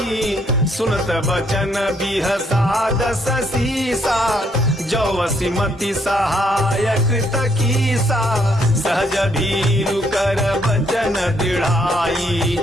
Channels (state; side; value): normal; both; correlation 0.71